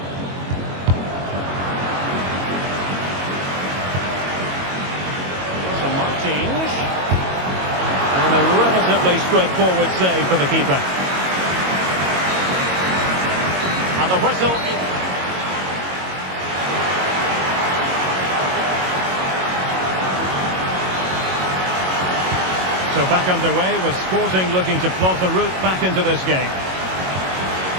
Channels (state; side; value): late; left; 22 ms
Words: So Martins. And a relatively straightforward save for the keeper. And the whistle is... So back underway with Sporting looking to plot the route back into this game.